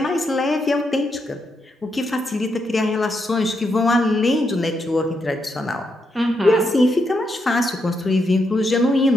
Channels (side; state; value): both; normal; correlation 0.81